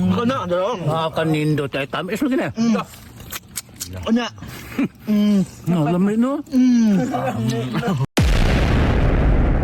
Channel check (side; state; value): both; identical; correlation 1.00